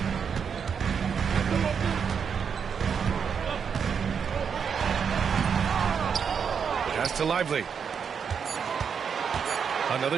Pass to Lively. Another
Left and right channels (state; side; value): quieter; left; 6.8 dB